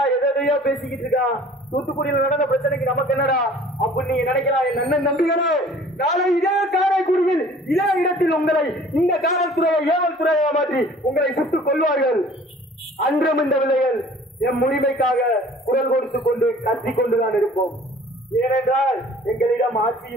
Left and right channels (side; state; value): both; normal; correlation 0.50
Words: எதையோ பேசிக்கிட்டு இருக்கான், தூத்துக்குடியில் நடந்த பிரச்சனைக்கு நமக்கு என்னடா அப்படி நீங்க நினைக்கலாம். என் அண்ணன் நம்பிகளே, நாளை இதே காரைக்குடியில் இதே இடத்தில் உங்களை இந்த காவல்துறையை ஏவல் துறையை மாற்றி உங்களை சுட்டுக் கொள்வார்கள். அன்றும் இந்த விலைகள் எம் உரிமைக்காக குரல் கொடுத்துக் கொண்டு கத்திக் கொண்டுதான் இருப்போம். ஏனென்றால் எங்களிடம்